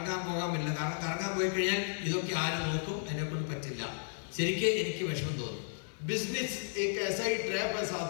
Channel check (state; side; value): silent; right; digital silence